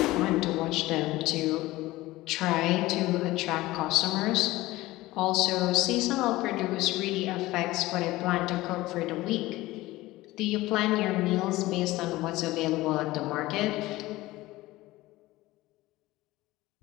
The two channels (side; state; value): right; quieter; 18.4 dB